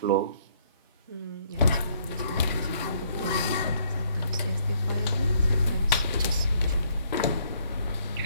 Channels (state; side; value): inverted; both; correlation -0.67